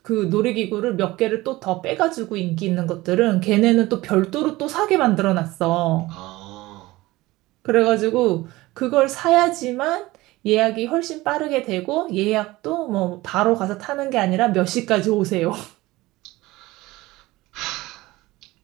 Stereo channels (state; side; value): quieter; left; 19.2 dB